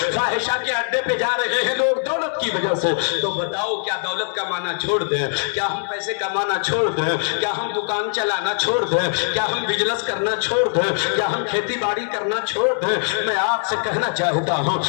فاحشہ کے اڈے پہ جا رہے ہیں لوگ دولت کی وجہ سے، تو بتاؤ کیا دولت کمانا چھوڑ دیں؟ کیا ہم پیسے کمانا چھوڑ دیں؟ کیا ہم دکان چلانا چھوڑ دیں؟ کیا ہم بزنس کرنا چھوڑ دیں؟ کیا ہم کھیتی باڑی کرنا چھوڑ دیں؟ میں آپ سے کہنا چاہتا ہوں،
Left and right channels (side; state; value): right; silent; digital silence